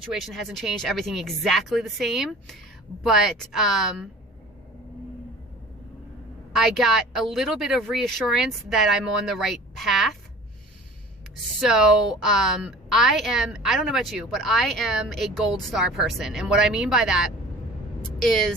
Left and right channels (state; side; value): normal; both; correlation 0.44